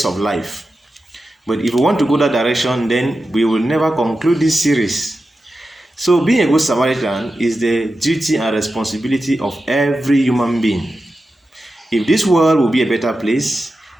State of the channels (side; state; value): both; normal; correlation 0.92